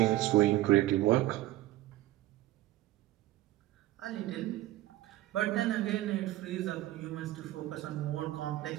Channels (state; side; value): quieter; left; 16.0 dB